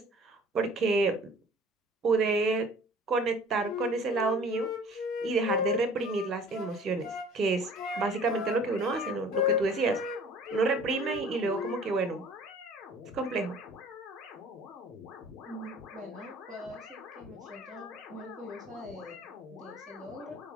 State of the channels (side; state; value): both; normal; correlation 0.48